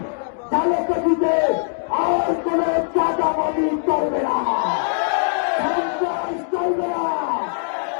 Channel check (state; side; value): silent; right; digital silence